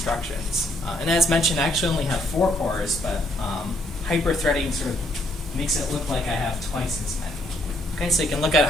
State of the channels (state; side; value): normal; both; correlation 0.69